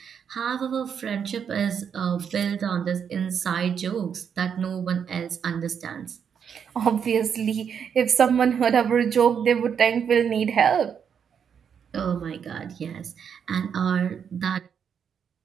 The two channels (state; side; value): quieter; left; 7.5 dB